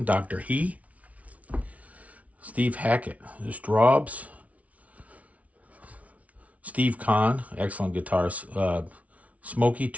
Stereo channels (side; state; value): left; late; 0.067 ms